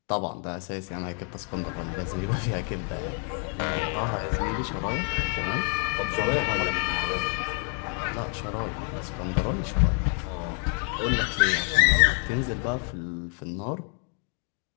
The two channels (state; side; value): quieter; right; 33.0 dB